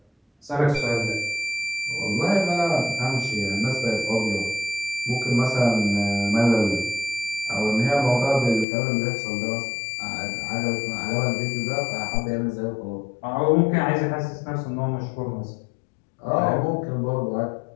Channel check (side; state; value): right; drops out; at 8.7 s